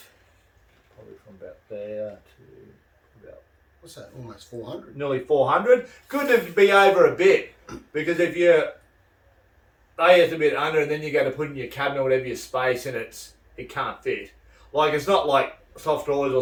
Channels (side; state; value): both; identical; correlation 1.00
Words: Probably from about there to about. What's that? Almost 400. Nearly 400. Good to be over a bit, because if you it's a bit under, and then you go to put in your cabinet or whatever your space, and it can't fit. Like, it's not like soft drawers